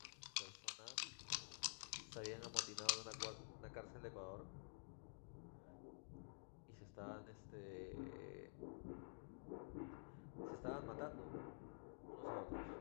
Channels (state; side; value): silent; right; digital silence